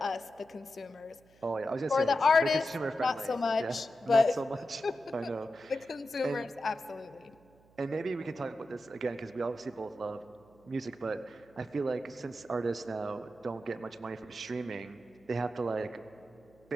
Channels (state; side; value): noise; right; hum, 29 dB below the sound